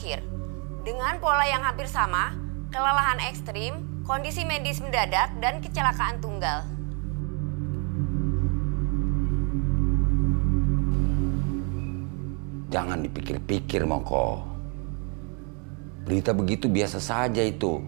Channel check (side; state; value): left; quieter; 35.7 dB